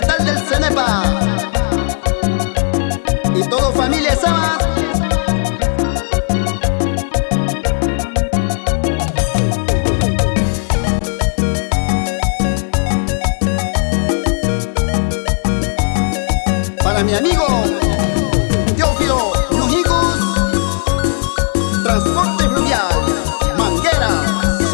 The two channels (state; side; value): silent; right; 64 dB below the other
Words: del Cenepa y todo familia Sama. Para mi amigo Teófilo Nujicus, Transporte Fluvial, Manguera,